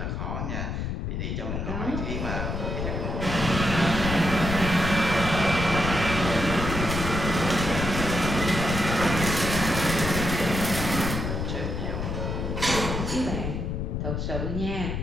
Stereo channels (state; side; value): noise; left; rumble, 3 dB below the sound